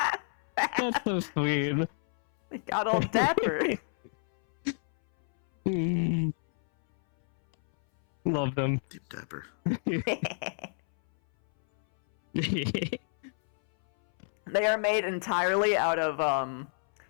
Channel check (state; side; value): silent; right; 59 dB below the other